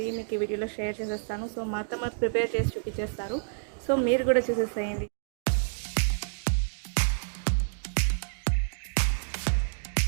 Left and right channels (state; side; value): silent; left; digital silence